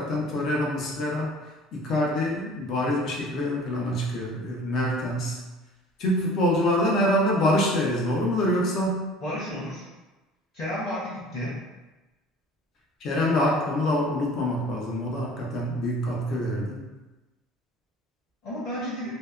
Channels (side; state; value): both; normal; correlation 0.47